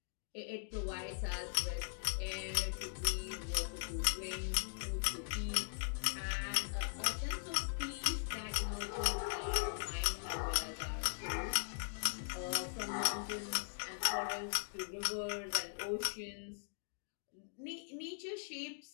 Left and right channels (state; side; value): silent; right; digital silence